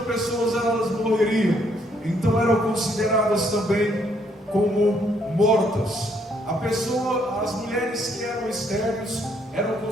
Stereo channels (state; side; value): normal; both; correlation 0.70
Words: pessoas, elas morreriam. Então eram consideradas também como mortas. As mulheres que eram estéreis eram